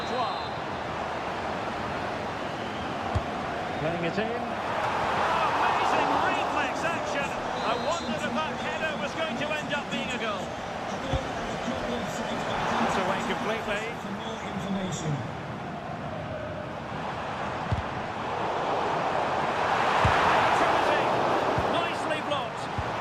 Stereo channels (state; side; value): identical; both; correlation 1.00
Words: Playing it in. Oh, amazing reflex action. I wondered if that header was going to end up being a goal. It's away completely. For more information. Nicely blocked.